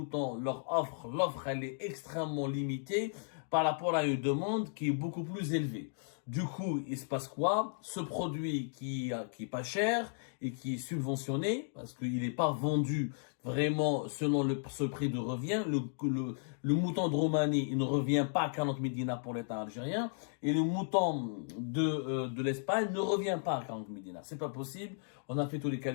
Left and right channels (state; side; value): silent; right; digital silence